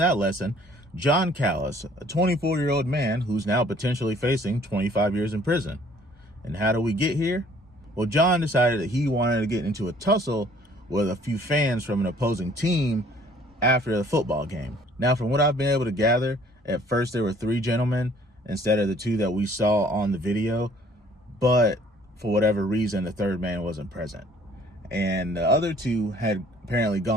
that lesson. John Callis, a 24-year-old man who's now potentially facing 25 years in prison. And how do we get here? Well, John decided that he wanted to get into a tussle with a few fans from an opposing team after the football game. Now, from what I've been able to gather, at first there were 3 gentlemen instead of the 2 that we saw on the video, but for whatever reason, the 3rd man wasn't present. And the other 2 had apparently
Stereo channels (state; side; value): normal; both; correlation 0.57